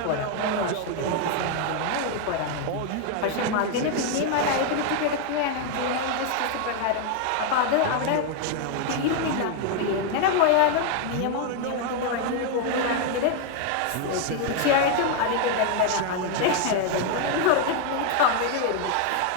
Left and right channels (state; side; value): different; both; correlation 0.00